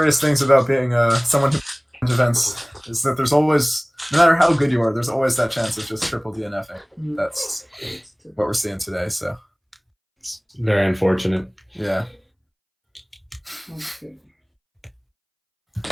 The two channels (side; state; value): both; identical; correlation 1.00